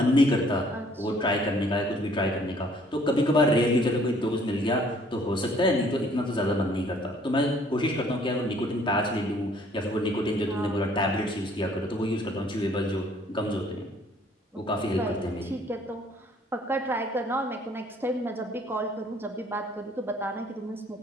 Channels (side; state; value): both; normal; correlation 0.59